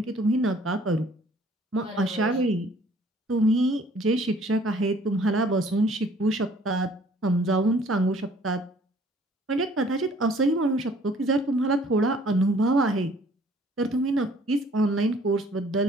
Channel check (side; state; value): both; normal; correlation 0.57